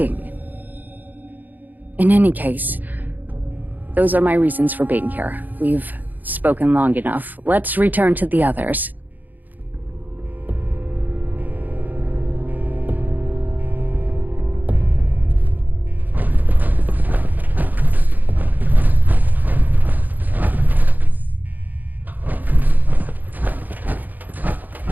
In any case, those are my reasons for being here. We've spoken long enough. Let's return to the others.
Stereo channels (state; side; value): late; left; 0.084 ms